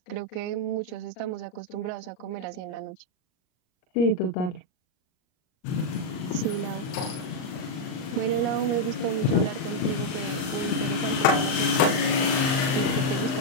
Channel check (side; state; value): right; late; 38 ms